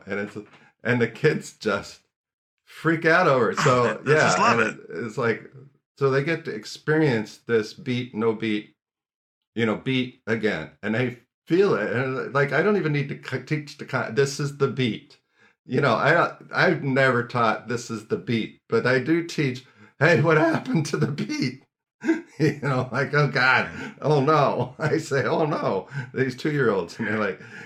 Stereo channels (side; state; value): both; identical; correlation 1.00